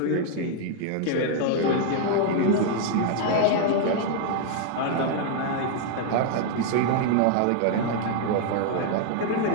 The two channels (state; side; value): different; both; correlation 0.00